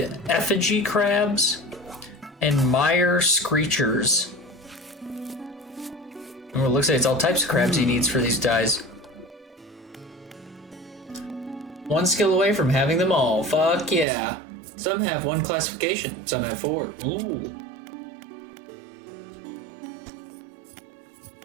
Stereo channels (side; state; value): left; drops out; at 14.1 s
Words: effigy crabs and mire screechers. Oh, it looks like it's all types of crabs he needs for these dyes. One skill away from having them all. Fuck yeah. Some have one classification, some have 4. Ooh.